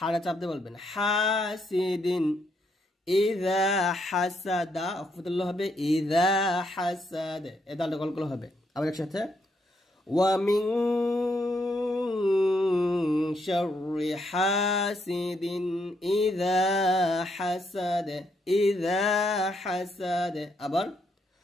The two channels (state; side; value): normal; both; correlation 0.76